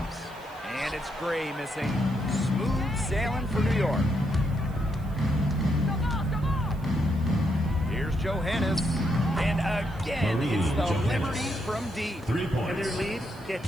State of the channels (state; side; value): noise; right; hiss, 27 dB below the sound